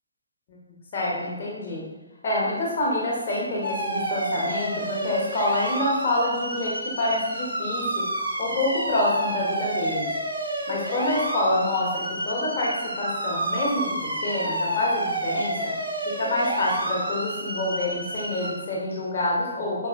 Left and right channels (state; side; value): inverted; both; correlation -0.52